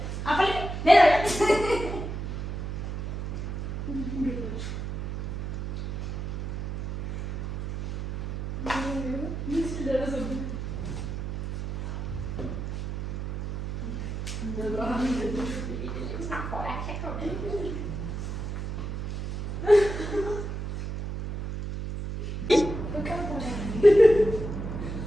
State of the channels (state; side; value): noise; right; hum, 5 dB below the sound